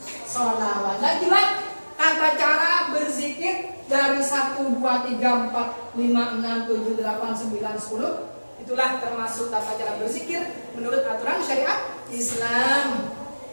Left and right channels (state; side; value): inverted; both; correlation -1.00